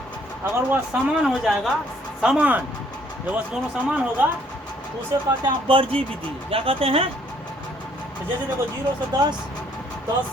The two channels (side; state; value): both; normal; correlation 0.64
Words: अगर वह समान हो जाएगा, समान, जब वह दोनों समान होगा तो उसे कहते हैं अपवर्ती विधि। क्या कहते हैं? तो जैसे देखो 0 से 10,